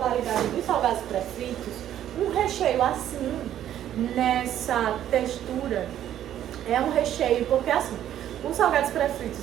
de salgados pré-fritos, um recheio assim, nessa textura, é um recheio, porque assim, os salgados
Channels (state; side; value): quieter; left; 11.3 dB